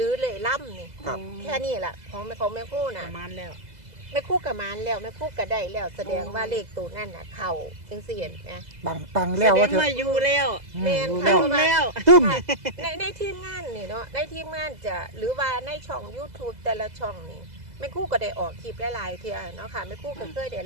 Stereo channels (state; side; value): late; left; 2.0 ms